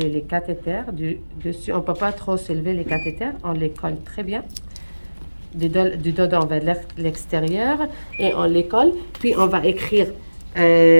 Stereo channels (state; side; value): inverted; both; correlation -1.00